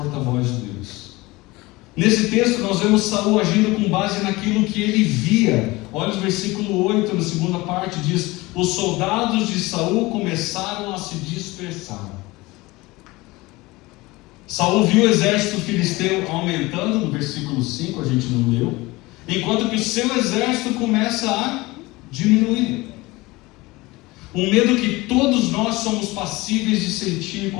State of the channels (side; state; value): right; quieter; 21.5 dB